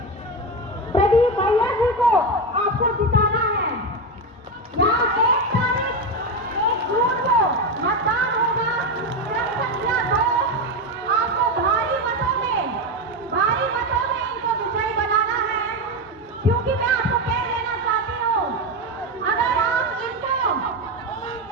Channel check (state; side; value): normal; both; correlation 0.14